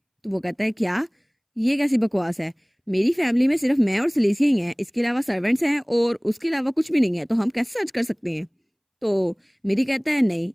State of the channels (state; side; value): identical; both; correlation 1.00